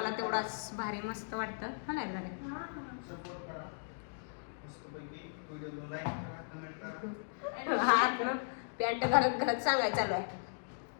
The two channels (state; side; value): silent; right; digital silence